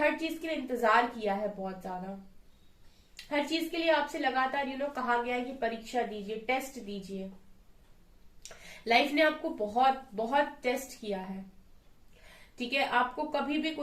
चीज के लिए इंतजार किया है बहुत ज्यादा, हर चीज के लिए आपसे लगातार कहा गया है कि परीक्षा दीजिए, टेस्ट दीजिए। लाइफ ने आपको बहुत बहुत टेस्ट किया है। ठीक है, आपको कभी भी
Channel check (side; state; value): both; identical; correlation 1.00